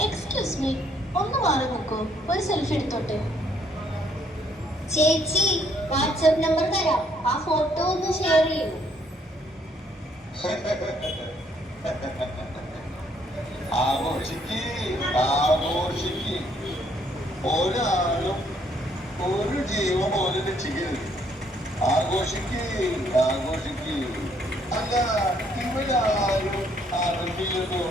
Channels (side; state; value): both; normal; correlation 0.67